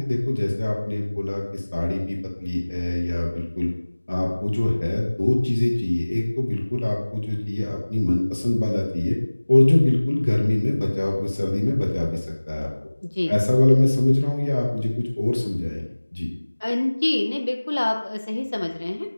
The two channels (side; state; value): both; inverted; correlation -1.00